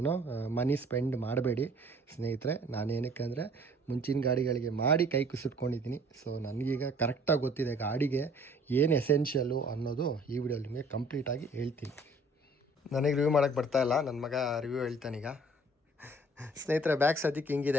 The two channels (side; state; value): both; normal; correlation 0.54